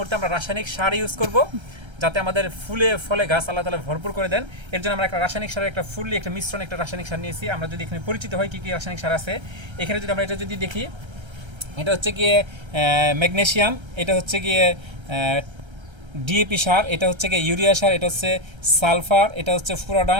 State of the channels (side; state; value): left; late; 1.3 ms